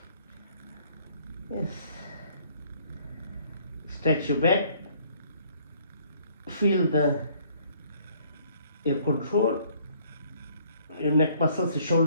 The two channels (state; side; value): inverted; both; correlation -0.62